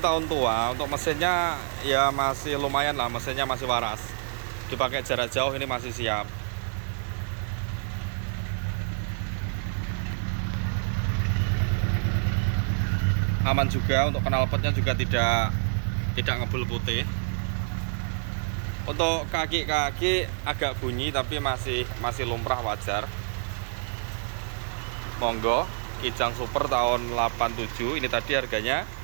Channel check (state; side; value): silent; left; 55 dB below the other